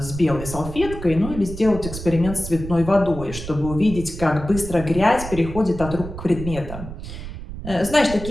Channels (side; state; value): right; noise; rumble, 10 dB below the sound